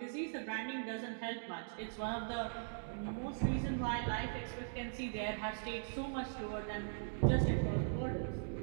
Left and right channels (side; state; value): left; silent; digital silence